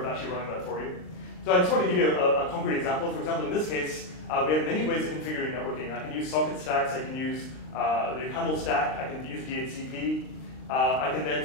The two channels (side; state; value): right; late; 39 ms